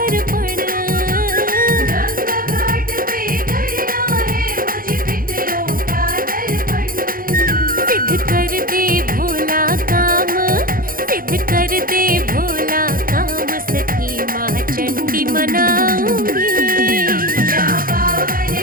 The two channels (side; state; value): left; late; 0.41 ms